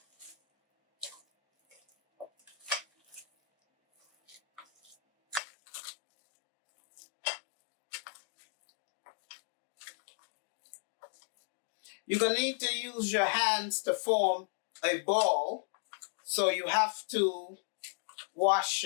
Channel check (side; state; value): right; drops out; at 5.4 s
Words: You're going to need to use your hands to form a ball, so you have to wash